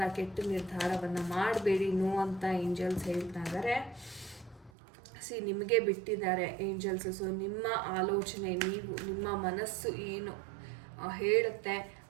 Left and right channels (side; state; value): left; drops out; at 4.7 s